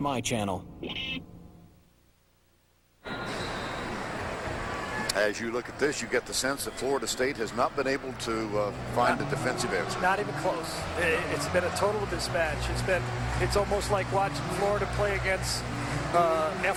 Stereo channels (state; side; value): identical; both; correlation 1.00